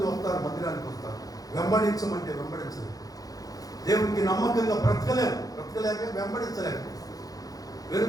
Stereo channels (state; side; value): late; right; 0.18 ms